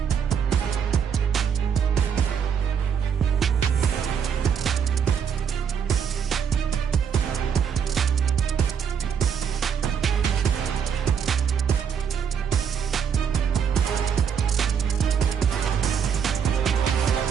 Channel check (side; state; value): left; quieter; 7.4 dB